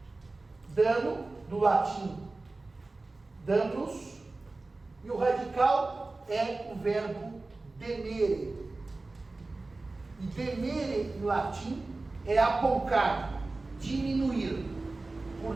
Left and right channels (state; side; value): quieter; left; 3.3 dB